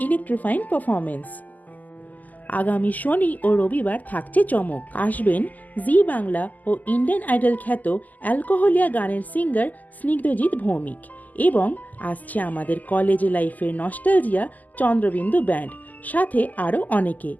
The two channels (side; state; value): right; late; 0.081 ms